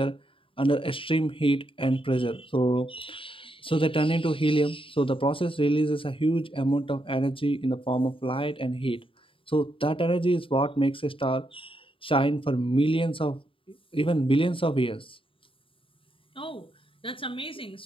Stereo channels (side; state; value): right; late; 0.25 ms